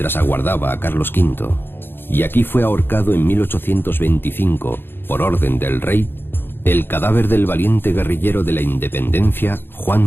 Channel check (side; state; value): right; late; 0.10 ms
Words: aguardaba a Carlos V, y aquí fue ahorcado en 1825, por orden del rey, el cadáver del valiente guerrillero de la independencia, Juan